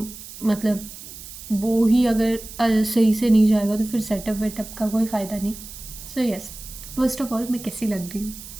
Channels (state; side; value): noise; right; hiss, 14 dB below the sound